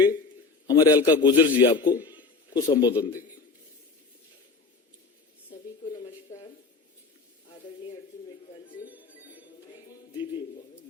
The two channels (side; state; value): right; quieter; 4.4 dB